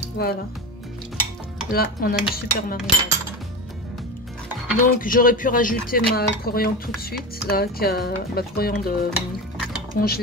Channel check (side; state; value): both; normal; correlation 0.23